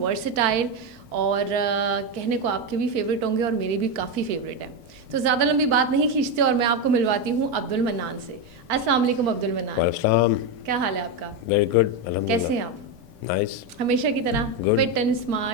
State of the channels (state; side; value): late; left; 1.7 ms